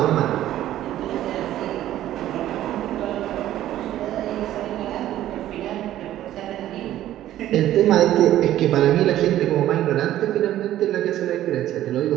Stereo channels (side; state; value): left; quieter; 13.1 dB